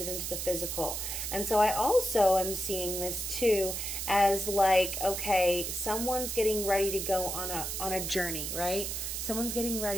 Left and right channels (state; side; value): noise; right; hiss, 4 dB below the sound